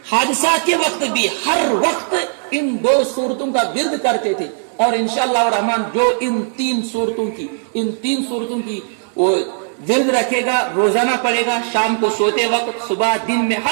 حادثات کے وقت بھی، ہر وقت ان 2 صورتوں کا ورد کرتے تھے، اور انشاءاللہ الرحمن جو ان 3 صورتوں کی وہ ورد رکھے گا، روزانہ پڑھے گا، شام کو سوتے وقت، صبح دن میں،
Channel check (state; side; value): silent; left; 65 dB below the other